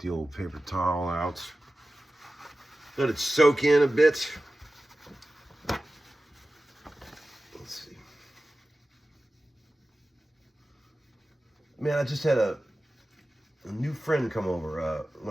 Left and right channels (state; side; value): normal; both; correlation 0.95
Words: old paper towel out. Let it soak in a bit. Let's see. Man, I just had a new friend come over.